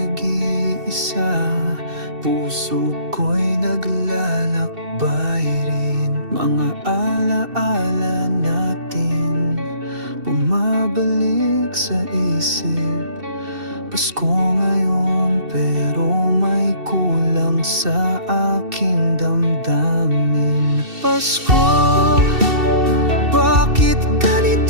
puso ko'y naglalakbay rin. Mga alaala natin bumabalik sa isip. Pasko ngayon pero may kulang sa aking damdamin. Pasko, bakit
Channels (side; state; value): left; late; 2.7 ms